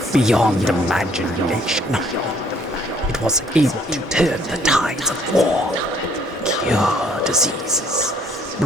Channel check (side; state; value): both; normal; correlation 0.62